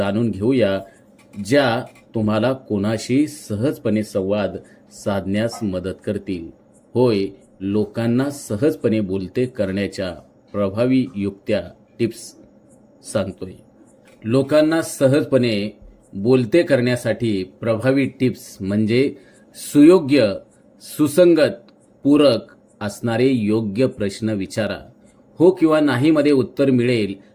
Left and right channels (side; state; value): both; identical; correlation 1.00